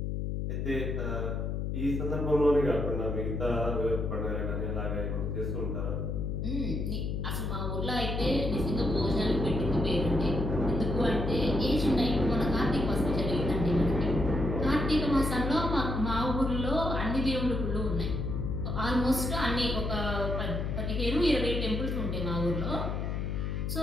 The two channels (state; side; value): noise; left; hum, 1 dB below the sound